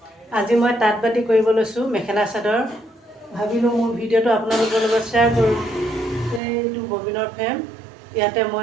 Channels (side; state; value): left; drops out; at 6.4 s